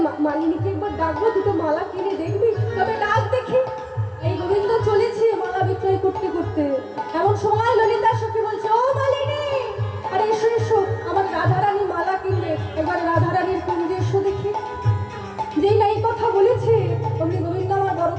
মালিনীকে একবার ডাকবো, দুটো মালা কিনে দেখবি? তবে ডাক দেখি। এই গোবিন্দ চলেছে মালা বিক্রয় করতে করতে। এমন সময় ললিতা সখী বলছে, ও মালিনী, আরে এসো এসো, আমার রাধারানী মালা কিনবে, এবার রাধারানীর কুঞ্জে এসো দেখি। যেই না এই কথা বলেছে অমনি গোবিন্দ আমার বড়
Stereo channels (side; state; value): both; identical; correlation 1.00